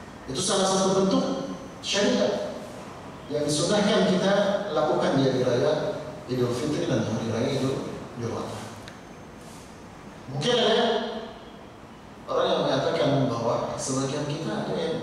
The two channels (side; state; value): both; identical; correlation 1.00